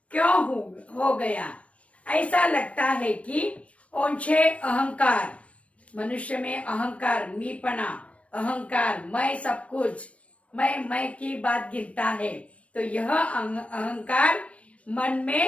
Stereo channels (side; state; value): right; late; 0.064 ms